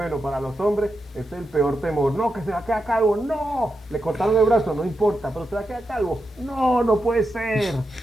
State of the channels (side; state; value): both; normal; correlation 0.87